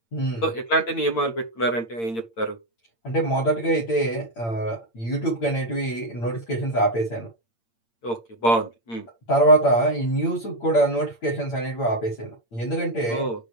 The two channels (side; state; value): right; late; 8.7 ms